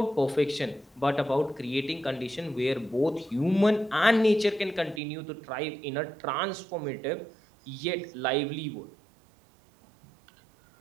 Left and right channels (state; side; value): drops out; left; at 5.0 s